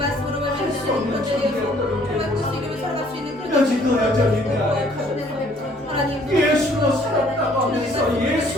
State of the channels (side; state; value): both; normal; correlation 0.60